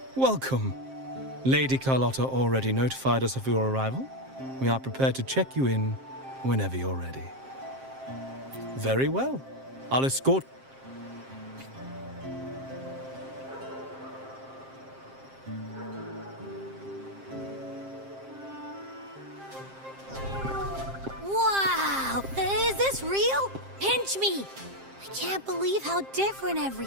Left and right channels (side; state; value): left; late; 7.5 ms